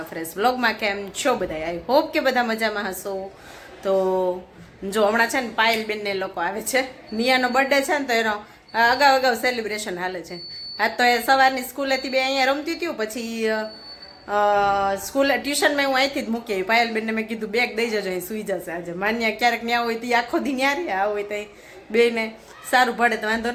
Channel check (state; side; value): identical; both; correlation 1.00